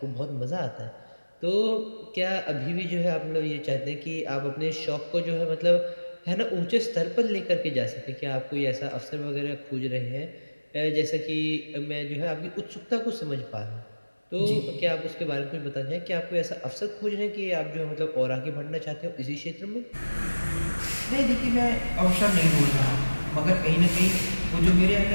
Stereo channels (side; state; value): both; inverted; correlation -1.00